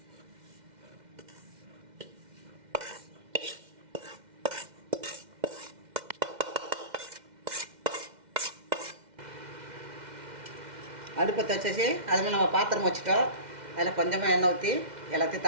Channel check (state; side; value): late; left; 2.1 ms